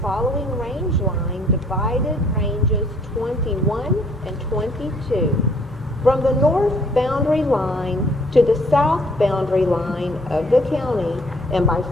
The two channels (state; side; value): normal; both; correlation 0.61